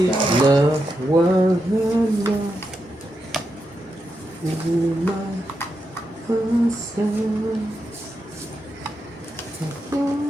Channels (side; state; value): both; normal; correlation 0.86